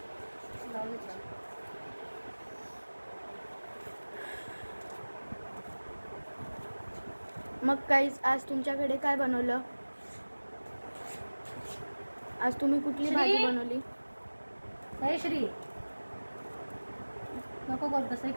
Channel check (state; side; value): inverted; both; correlation -1.00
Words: मग गाईस आज तुमच्याकडे काय बनवलं? आज तुम्ही कुठली भाजी बनवली? हे श्री नको करू तसं,